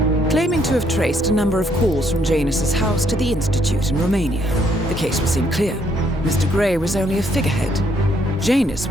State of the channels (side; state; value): both; normal; correlation 0.70